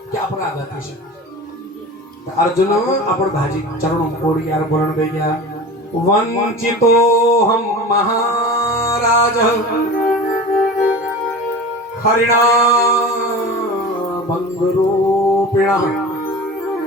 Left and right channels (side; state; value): both; normal; correlation 0.34